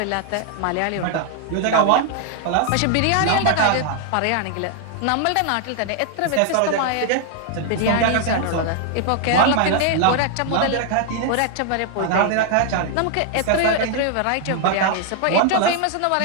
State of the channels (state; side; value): different; both; correlation 0.00